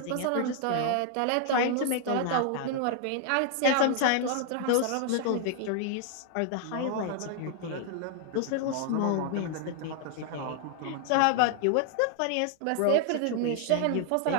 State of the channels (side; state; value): both; different; correlation 0.00